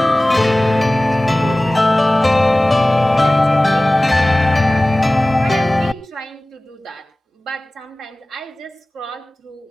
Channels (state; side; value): normal; both; correlation 0.98